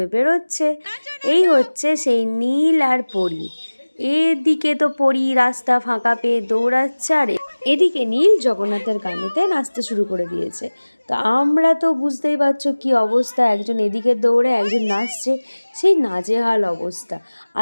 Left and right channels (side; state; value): both; inverted; correlation -1.00